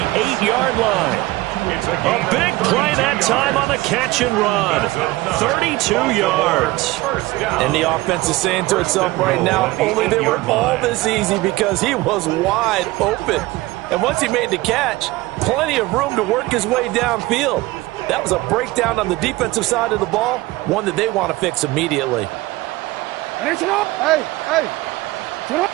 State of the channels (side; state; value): left; quieter; 19.6 dB